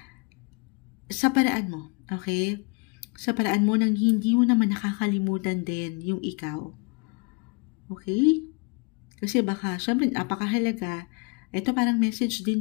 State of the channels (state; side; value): quieter; right; 31.8 dB